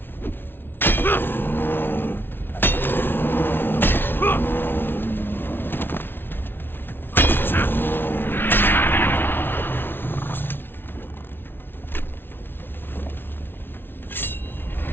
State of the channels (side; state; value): right; late; 0.10 ms